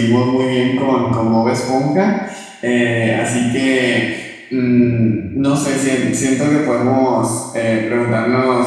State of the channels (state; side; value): identical; both; correlation 1.00